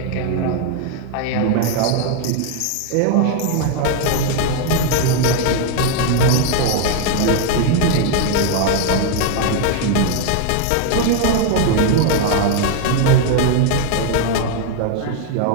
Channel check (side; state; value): both; different; correlation 0.01